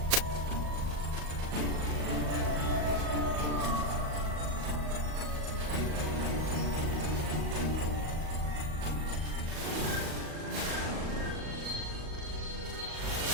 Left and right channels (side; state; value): left; late; 38 ms